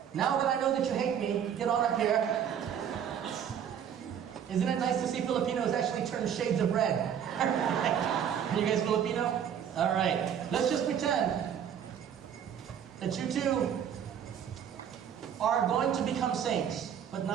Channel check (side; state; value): left; quieter; 8.7 dB